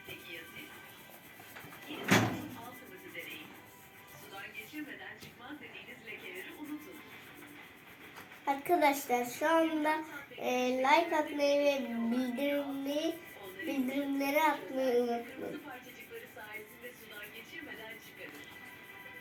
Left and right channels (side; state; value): both; identical; correlation 1.00